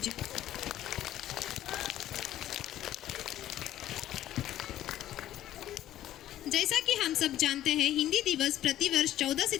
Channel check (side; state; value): right; quieter; 12.9 dB